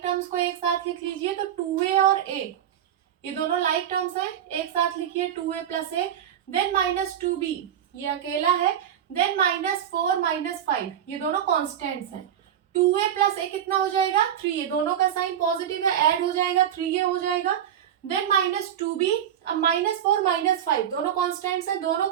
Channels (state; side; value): quieter; left; 9.9 dB